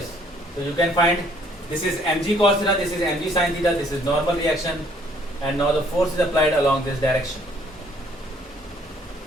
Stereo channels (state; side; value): normal; both; correlation 0.62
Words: So you can find this is mg cos theta. This is mg sin theta. This is normal reaction, and now the force is applied along this direction.